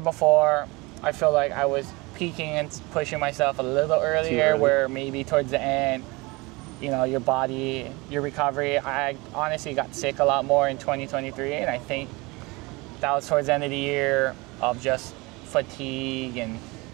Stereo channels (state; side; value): quieter; left; 24.7 dB